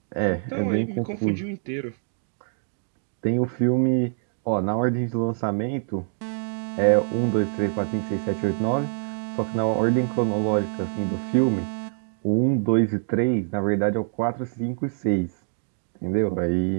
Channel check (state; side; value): silent; left; digital silence